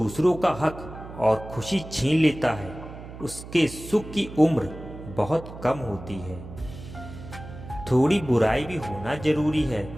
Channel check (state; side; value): noise; right; hum, 14 dB below the sound